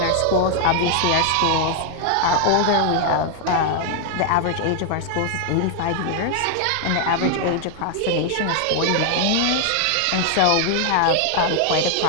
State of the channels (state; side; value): different; both; correlation 0.00